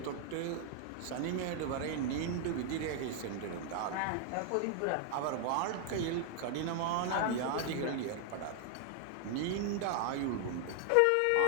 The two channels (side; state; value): both; different; correlation 0.00